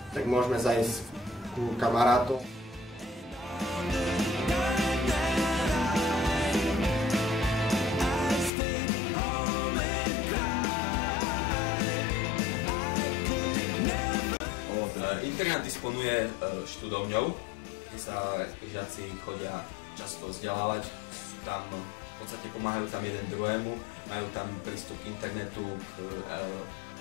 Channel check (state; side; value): drops out; right; at 8.5 s